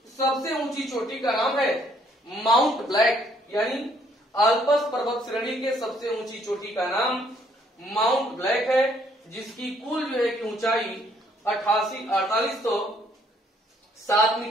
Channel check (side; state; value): both; normal; correlation 0.66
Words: सबसे ऊंची चोटी का नाम है माउंट ब्लैक, यानी आल्प्स पर्वत श्रेणी के सबसे ऊंची चोटी का नाम माउंट ब्लैक है, जिसकी कुल जो है कि ऊंचाई 4807